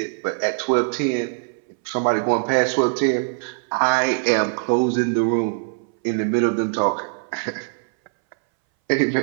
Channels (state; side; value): silent; left; 61 dB below the other